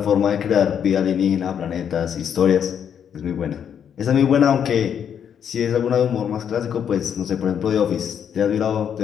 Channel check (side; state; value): right; quieter; 8.3 dB